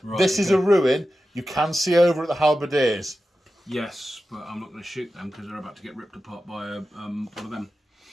Right, this is a ruin. You can see over at the halberdiers. Yes, but I'm not going to shoot them because they're about to get ripped apart by one of them.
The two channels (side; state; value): both; normal; correlation 0.93